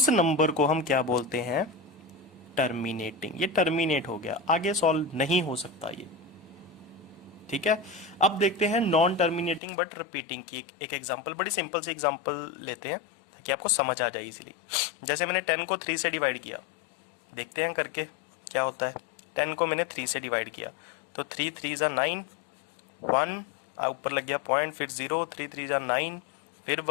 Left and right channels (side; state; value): right; drops out; at 9.6 s